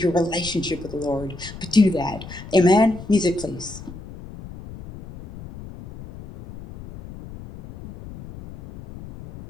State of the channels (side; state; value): left; noise; rumble, 15 dB below the sound